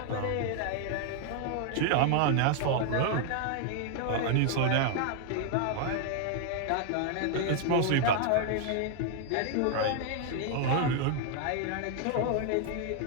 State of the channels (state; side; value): different; both; correlation 0.00